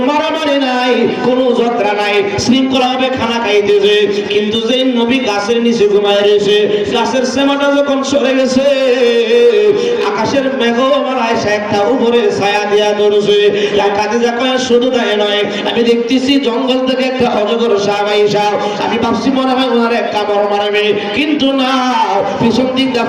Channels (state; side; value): identical; both; correlation 1.00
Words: মারামারি নাই, কোনো ঝগড়া নাই, শৃঙ্খলা ভাবে খানা খাইতেছে। কিন্তু যে নবী গাছের নিচে ঘুমায় রয়েছে, গাছের সেমাটা যখন সরে গেছে, আকাশের মেঘমালা এসে একটা উপরে ছায়া দিয়া ধরছে। খাদিজা কয় শুধু তাই নয়, আমি দেখতেছি জঙ্গল থেকে একটা অজগর সাপ আইসা, আমি ভাবছি মনে হয় ওনার একটা বড় মারবে, কিন্তু না, পিছন দিক দিয়ে